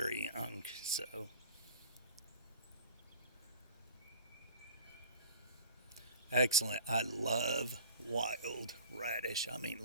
young, so. Excellent. I love wild radish. I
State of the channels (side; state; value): both; inverted; correlation -0.43